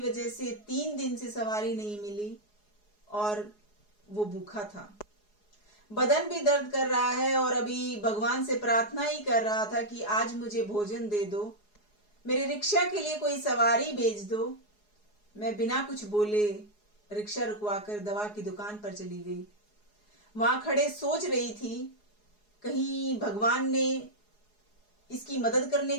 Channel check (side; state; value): right; late; 4.8 ms